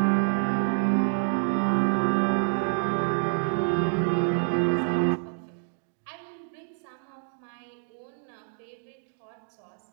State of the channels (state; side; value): silent; left; digital silence